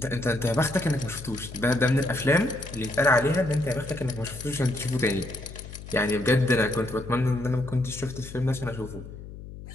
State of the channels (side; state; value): left; noise; hum, 13 dB below the sound